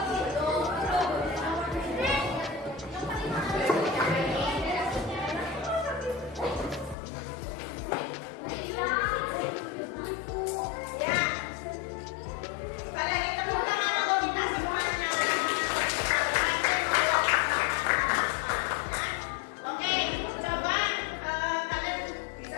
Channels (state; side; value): drops out; right; at 7.0 s